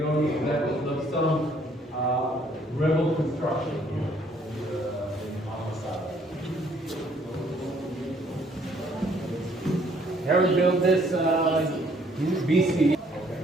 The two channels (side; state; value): both; normal; correlation 0.63